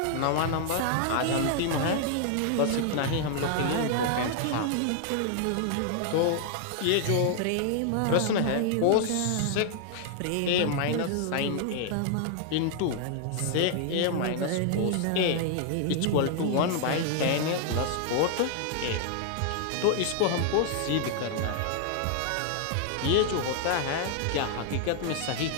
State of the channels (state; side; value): different; both; correlation 0.00